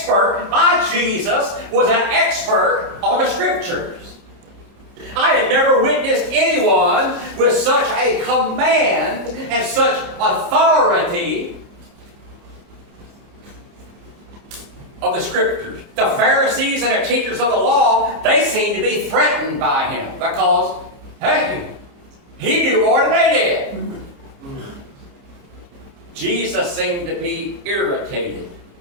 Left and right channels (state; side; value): late; left; 29 ms